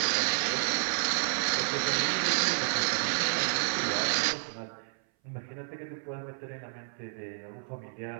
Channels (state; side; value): silent; left; 58 dB below the other